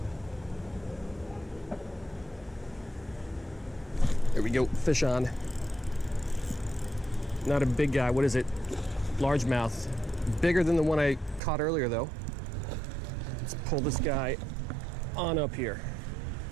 There we go, fish on. Not a big guy, what is it? Largemouth. Bigger than the one I caught earlier though. Let's pull this guy on up here.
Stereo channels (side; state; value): left; drops out; at 11.4 s